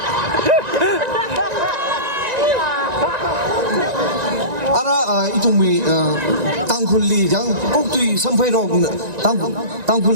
이tum 땅굴리 장 꼭두이 선포로 땅굴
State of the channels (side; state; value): left; late; 1.9 ms